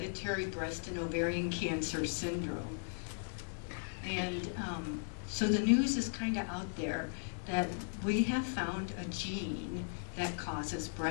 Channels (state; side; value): silent; right; digital silence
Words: breast and ovarian cancer syndrome. And so the news is kind of out there that we have found a gene that causes